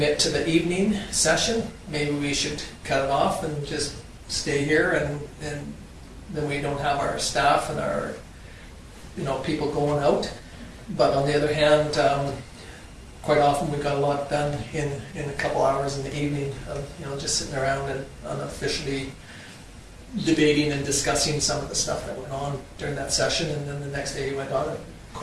to the evening session, maybe we should cut it off and just stay here, and then we don't have our staff and our, you know, people going out. But on the other hand, quite often we got a lot done in a couple hours in the evening of, you know, just sitting around and unofficially debating and discussing some of the stuff that went on during that session, and then the next day you went on it.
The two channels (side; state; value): both; identical; correlation 1.00